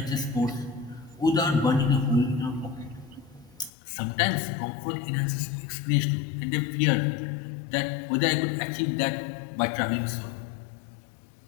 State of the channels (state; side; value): drops out; right; at 3.7 s